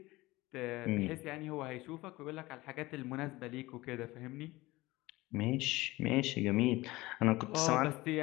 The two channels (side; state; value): right; quieter; 19.9 dB